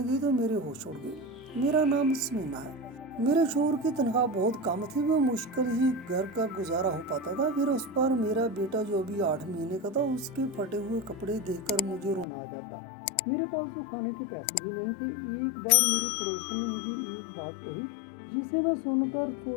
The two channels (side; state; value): right; drops out; at 12.2 s